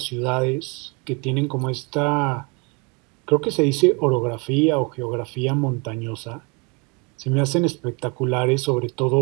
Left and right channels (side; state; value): left; quieter; 31.3 dB